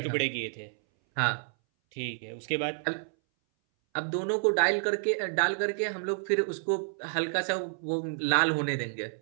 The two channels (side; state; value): left; silent; 58 dB below the other